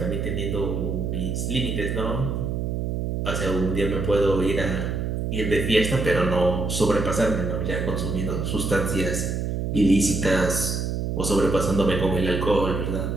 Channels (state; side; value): noise; right; hum, 1 dB below the sound